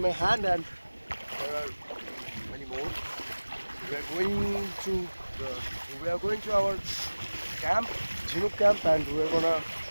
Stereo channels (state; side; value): inverted; both; correlation -1.00